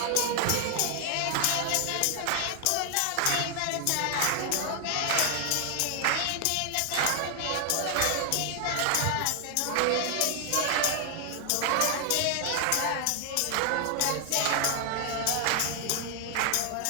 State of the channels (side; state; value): both; different; correlation 0.00